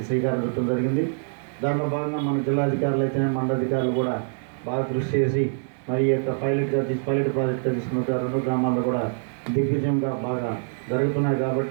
శ్రీకారం చుట్టడం జరిగింది. దానిలో భాగంగా మన జిల్లాధికారులు అయితేనే మండలాధికారులు కూడా బాగా కృషి చేసి మరి ఈ యొక్క పైలట్ ప్రాజెక్టుగా తీసుకున్న 2 గ్రామాల్లో కూడా దిగ్విజయంగా బాగా జరుగుతున్నాయి.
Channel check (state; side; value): silent; left; digital silence